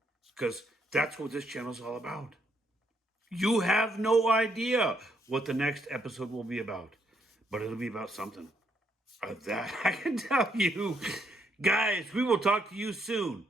Because that's what this channel is all about. You have no idea what the next episode will be about. But it'll be about something. That I can tell you. Guys, we will talk to you soon.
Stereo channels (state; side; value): normal; both; correlation 0.73